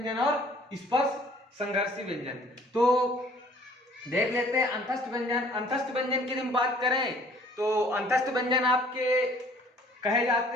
और स्पर्श संघर्षी व्यंजन, तो देख लेते हैं अंतस्थ व्यंजन। अंतस्थ व्यंजन की हम बात करें तो अंतस्थ व्यंजन आपके कहे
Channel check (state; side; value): normal; both; correlation 0.55